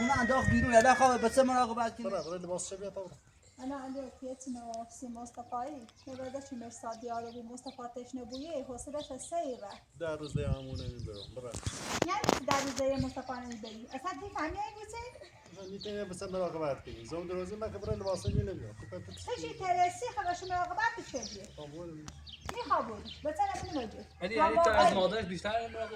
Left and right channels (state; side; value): identical; both; correlation 1.00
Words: انداخت بیرون یلا خواه بسه مراقبت کنی برو لباس چه بیا تا انا عندي كيتنا سي مصطفى نبدا مرصاد يارو مصطفى تشنبويه حوصلش السيرة در روز دیامونه میبرم برو يعني در زي مصطفى نبي اصلا تفهمي ايه بيصير میتونی بسه مراقبت کنی زوم دروازه من که برای لباسه نمیاد هشي ترسي خلاص مراقبات بتشدي میخوابون بس انا بنوجه یعنی تو از مادرش بیشتر